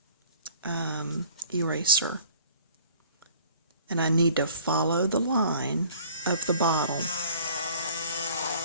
eraser, and I need to follow the line of the bottle.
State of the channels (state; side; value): inverted; both; correlation -0.52